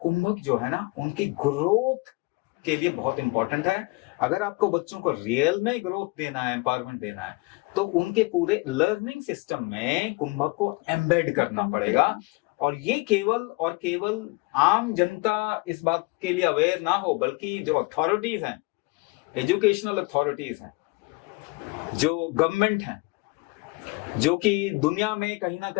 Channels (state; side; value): quieter; right; 24.3 dB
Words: जो है ना, उनकी ग्रोथ के लिए बहुत इंपॉर्टेंट है। अगर आपको बच्चों को रियल में ग्रोथ देना है, एम्पावरमेंट देना है, तो उनके पूरे लर्निंग सिस्टम में कुंभक को एम्बेड करना पड़ेगा। और ये केवल और केवल आम जनता इस बात के लिए अवेयर ना हो, बल्कि जो अथॉरिटीज हैं, एजुकेशनल अथॉरिटीज हैं, जो गवर्नमेंट हैं, जो कि दुनिया में कहीं ना